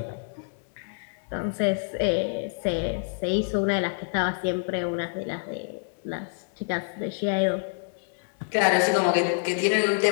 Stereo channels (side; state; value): right; silent; digital silence